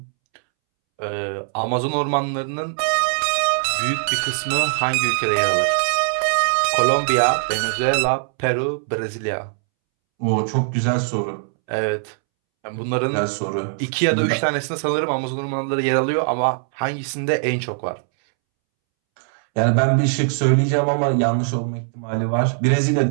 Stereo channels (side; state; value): left; silent; 65 dB below the other